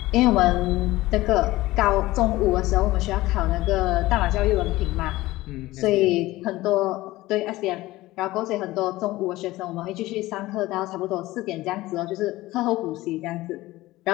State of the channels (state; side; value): quieter; right; 18.1 dB